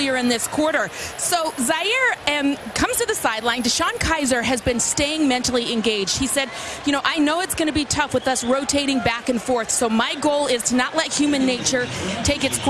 in this quarter. So Zaire comes to the sideline. Deshaun Kaiser has been staying mentally engaged. He said, you know, I know it's going to be tough with us rotating back and forth. So my goal is to not let human nature take its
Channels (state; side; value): identical; both; correlation 1.00